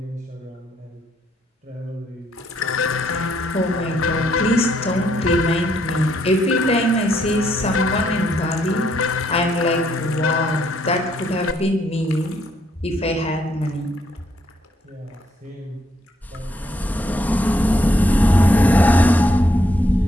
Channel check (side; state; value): both; normal; correlation 0.72